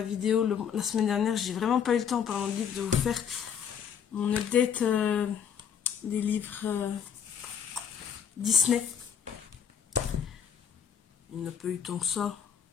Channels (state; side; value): quieter; right; 7.8 dB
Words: vidéo. La semaine dernière, j'ai vraiment pas eu le temps, en parlant de livres, de vous faire mon update des livres Disney. Il n'a pas eu tant que ça.